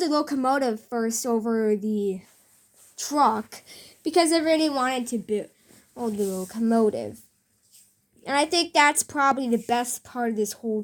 a locomotive first over the truck because I really wanted to build the locomotive. And I think that's probably the best part of this whole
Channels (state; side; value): identical; both; correlation 1.00